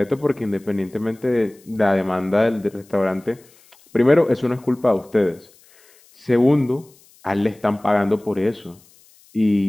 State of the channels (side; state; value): left; noise; hiss, 29 dB below the sound